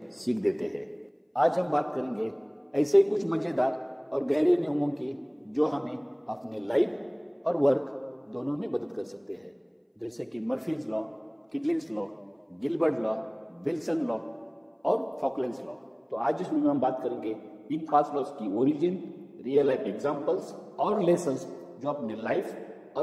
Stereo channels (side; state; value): both; identical; correlation 1.00